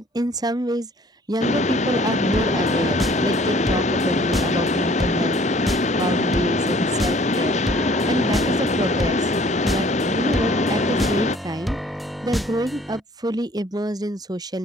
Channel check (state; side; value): normal; both; correlation 0.55